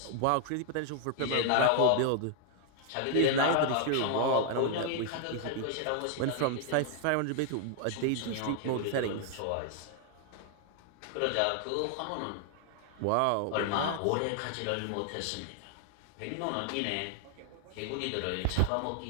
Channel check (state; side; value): different; both; correlation 0.00